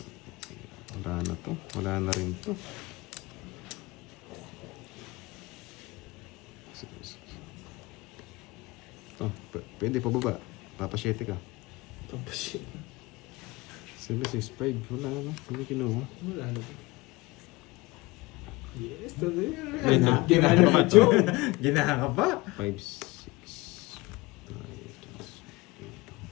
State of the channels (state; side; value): quieter; right; 22.5 dB